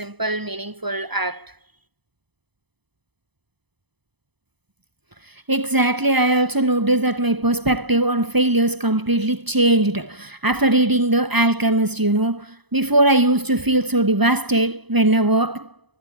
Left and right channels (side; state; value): left; late; 0.99 ms